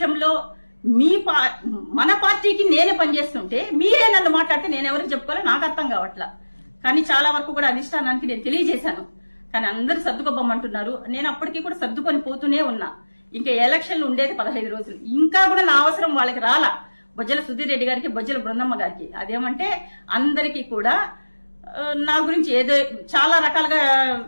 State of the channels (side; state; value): both; inverted; correlation -1.00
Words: మన పార్టీకి నేనే పనిచేస్తుంటే మీరే నన్ను మాట్లాడితే నేను ఎవరికి చెప్పుకోవాలో నాకు అర్థం కావట్లా. కానీ చాలా వరకు కూడా అధిష్టానానికి నేను తెలియజేశాను. కానీ అందరూ సర్దుకోబోమంటున్నారు. నేను అప్పటికీ కూడా సర్దుకొని పోతూనే ఉన్నా. ఇంకా ఎలక్షన్లు ఉండేది 15 రోజులు, ఇంకా కూడా నా అవసరం వాళ్ళకి రాలా. బొజ్జల సుధీర్ రెడ్డి గారికి, బొజ్జల బృందమ్మ గారికి అదేమంటే అందరికీ కూడా నా గురించి ఏదో చాలా రకాలుగా